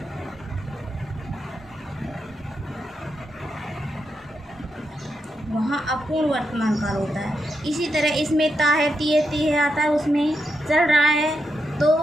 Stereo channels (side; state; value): both; normal; correlation 0.83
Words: वहाँ अपूर्ण वर्तमान काल होता है। इसी तरह इसमें ता है, ती है, ती है आता है, उसमें चल रहा है तो